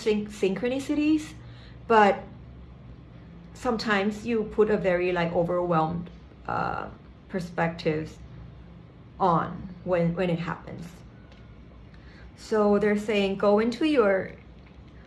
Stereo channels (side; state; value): both; identical; correlation 1.00